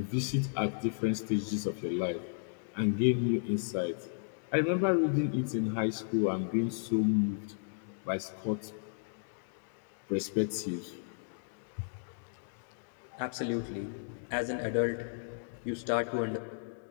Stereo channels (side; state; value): right; silent; digital silence